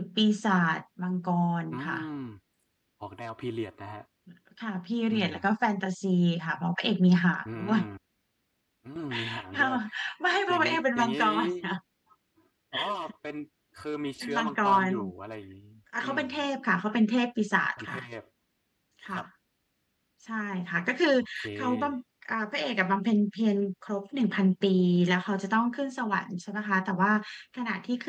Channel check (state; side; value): identical; both; correlation 1.00